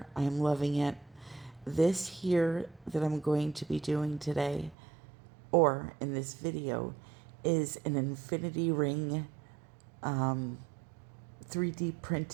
I am loving it. This here that I'm going to be doing today, or in this video, is an infinity ring 3D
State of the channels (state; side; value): drops out; left; at 4.8 s